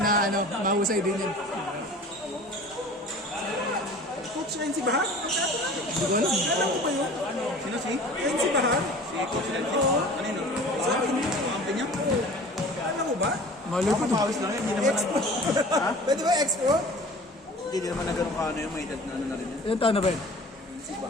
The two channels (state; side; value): normal; both; correlation 0.43